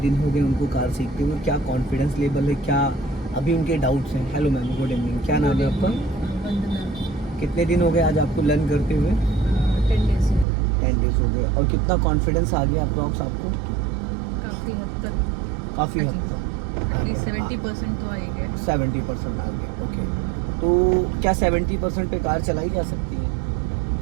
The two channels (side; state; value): left; drops out; at 10.5 s